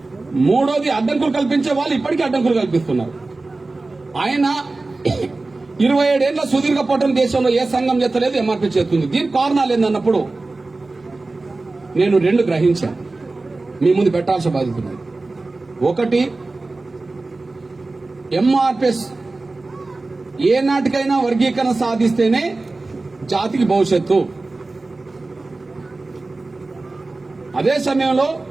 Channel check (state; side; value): quieter; left; 3.3 dB